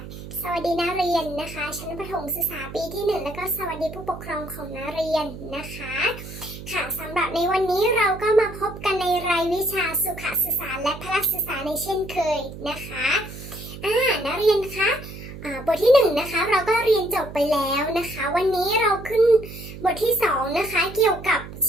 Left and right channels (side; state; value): right; noise; hum, 12 dB below the sound